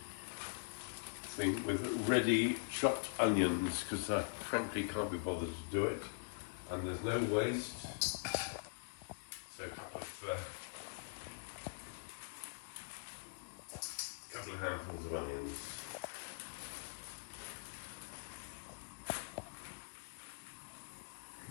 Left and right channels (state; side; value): silent; right; digital silence